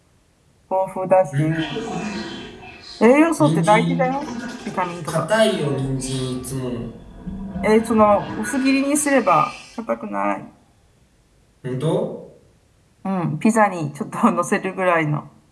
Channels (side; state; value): both; identical; correlation 1.00